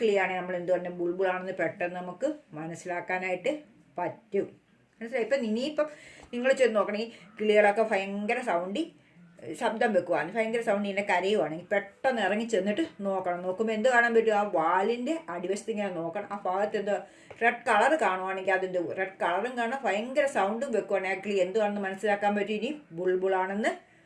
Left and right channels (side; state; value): both; identical; correlation 1.00